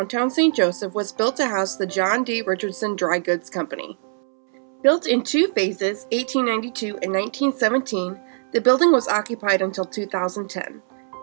St. Joseph was built to house the John D. Richardson Dry Goods Company. Built in two phases, 1892 and 1917, the building was occupied until 2010.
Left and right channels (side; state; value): left; silent; 64 dB below the other